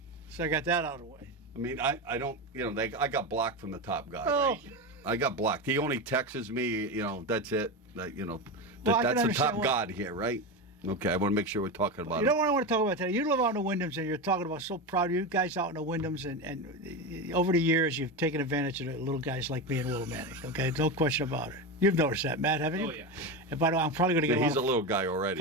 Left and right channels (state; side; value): normal; both; correlation 0.18